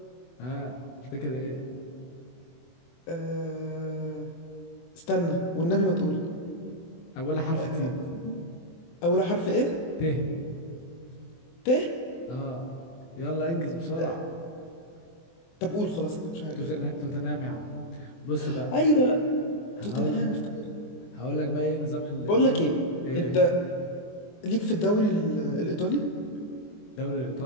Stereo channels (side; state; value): right; late; 24 ms